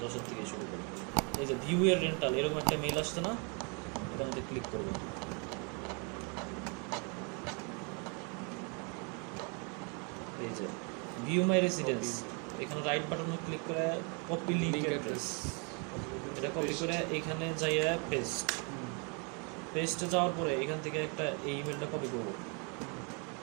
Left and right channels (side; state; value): left; quieter; 35.4 dB